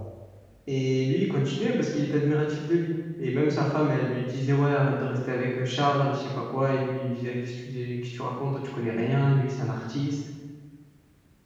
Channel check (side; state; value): both; identical; correlation 1.00